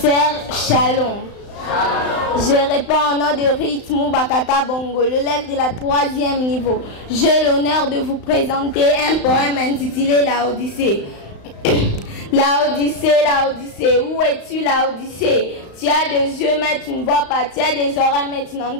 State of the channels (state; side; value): late; right; 35 ms